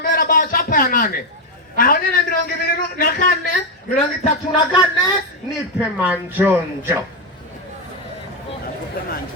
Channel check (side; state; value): both; normal; correlation 0.07